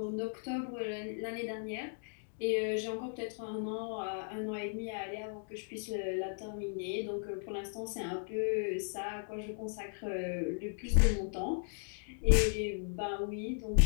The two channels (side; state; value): right; silent; digital silence